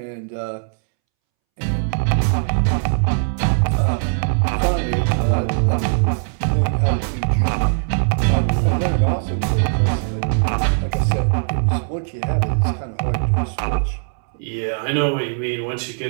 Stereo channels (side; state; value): left; silent; 66 dB below the other